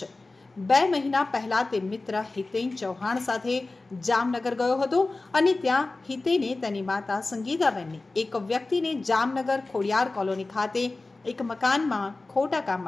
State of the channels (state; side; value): quieter; right; 3.3 dB